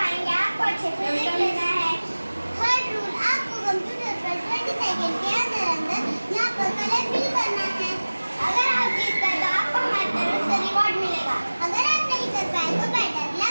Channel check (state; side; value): inverted; both; correlation -1.00